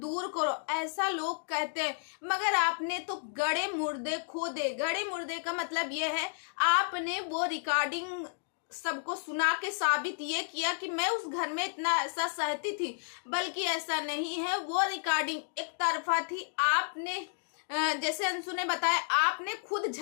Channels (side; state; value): right; silent; digital silence